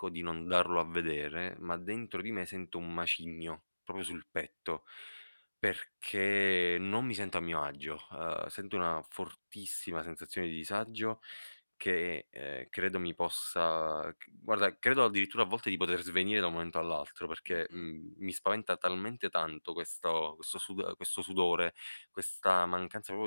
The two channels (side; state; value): both; inverted; correlation -1.00